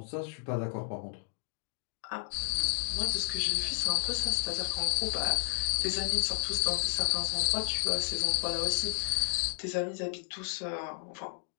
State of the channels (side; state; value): right; silent; 56 dB below the other